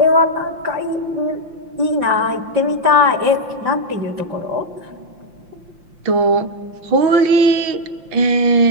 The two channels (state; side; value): late; left; 5.7 ms